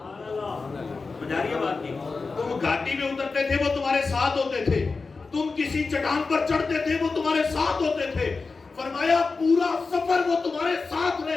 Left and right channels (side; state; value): right; quieter; 4.2 dB